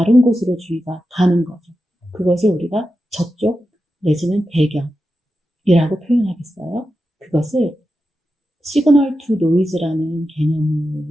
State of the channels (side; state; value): both; normal; correlation 0.90